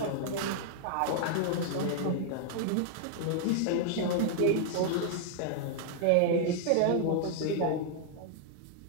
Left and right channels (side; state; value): both; different; correlation 0.00